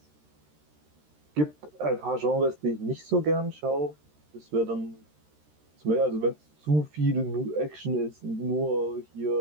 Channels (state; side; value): late; left; 13 ms